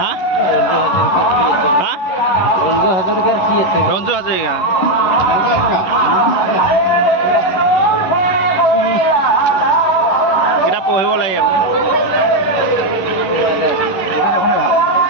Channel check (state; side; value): late; right; 11 ms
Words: হা ৰঞ্জু হাজৰিকা কিতাপ পঢ়িব লাগে।